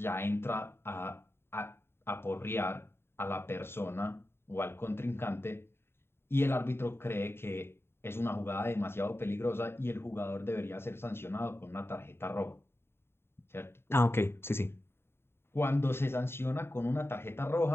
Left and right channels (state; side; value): late; right; 0.11 ms